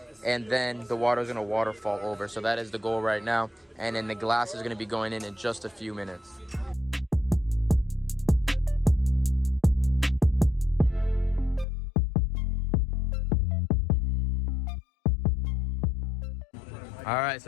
And then the water is gonna waterfall over. So that is the goal right now. And then the glass is gonna be going in just a few minutes. All right,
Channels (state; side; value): drops out; right; at 11.7 s